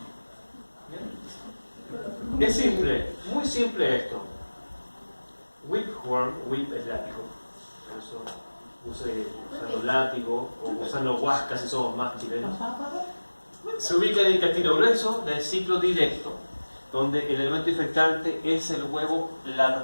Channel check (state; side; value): inverted; both; correlation -1.00